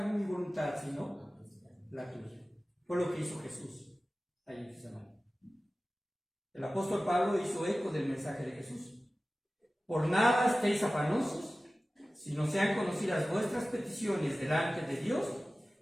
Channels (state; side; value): normal; both; correlation 0.96